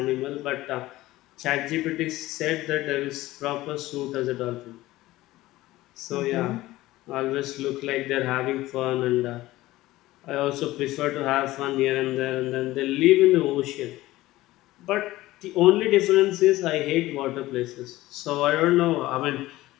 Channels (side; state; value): right; quieter; 17.3 dB